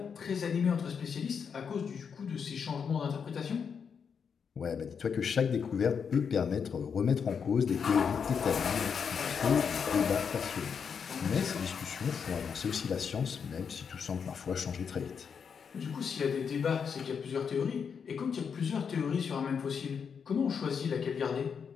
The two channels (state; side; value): quieter; right; 6.6 dB